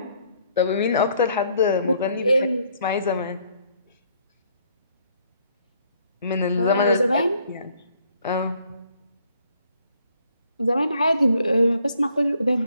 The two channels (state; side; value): inverted; both; correlation -0.66